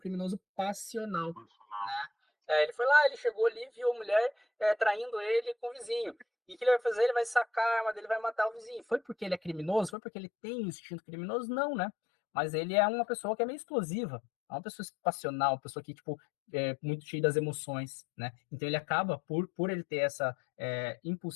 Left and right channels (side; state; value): right; drops out; at 9.9 s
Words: passional. Né? Ele foi lá, ele chegou ali, viu a mulher traindo ele com o vizinho. E o que ele vai fazer? Ele vai sacar a arma dele, vai matar o vizinho. Foi porque ele é criminoso? Foi porque ele tem um instinto criminoso? Não, né? Mas ele é uma pessoa que é meio explosiva. É uma pessoa passional, uma pessoa que, tipo, é muito cheia das emoções, né? Então ele acaba, por ele ter essa